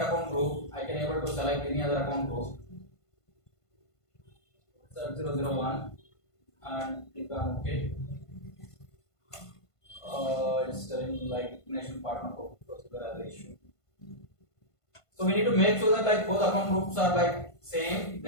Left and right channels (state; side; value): late; right; 1.5 ms